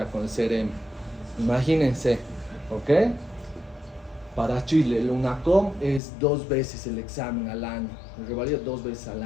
con el CRM. Imagínense, ¿ok? Para Chile, el UNACOM es 2 veces el examen al año, el revalida 2 veces al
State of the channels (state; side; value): drops out; right; at 6.0 s